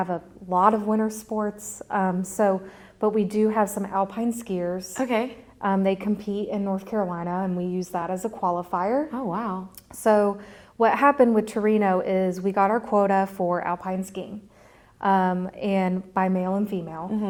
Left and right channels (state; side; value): identical; both; correlation 1.00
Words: a lot of winter sports. But we do have some alpine skiers. Okay. They compete in North Carolina, and we use that as a qualifier. Oh, wow. So what happened with Torino is we got our quota for alpine skiing, and by male and female.